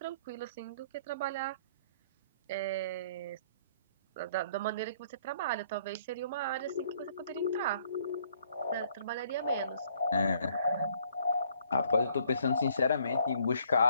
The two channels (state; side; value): inverted; both; correlation -0.63